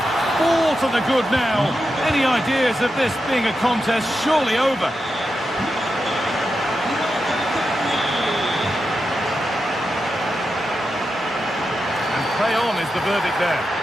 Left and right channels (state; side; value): normal; both; correlation 0.88